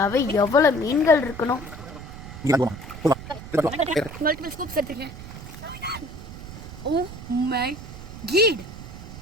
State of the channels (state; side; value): noise; right; rumble, 12 dB below the sound